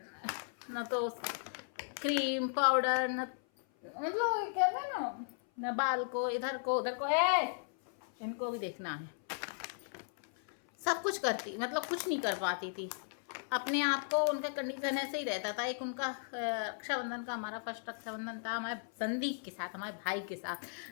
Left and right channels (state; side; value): silent; right; 54 dB below the other